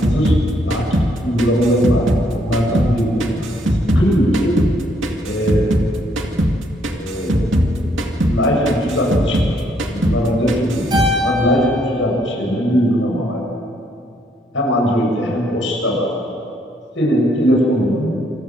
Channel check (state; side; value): normal; both; correlation 0.70